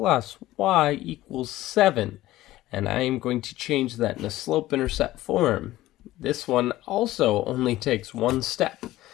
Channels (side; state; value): right; quieter; 16.1 dB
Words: y equals 7. And I am going to change that in a slope-intercept form. This one also only takes one step.